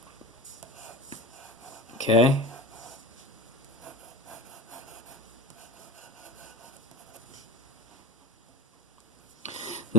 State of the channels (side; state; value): both; normal; correlation 0.30